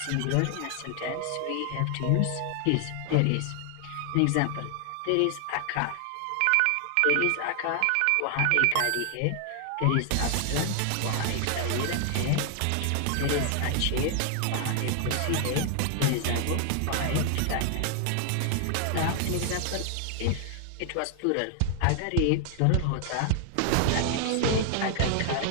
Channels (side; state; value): both; different; correlation 0.00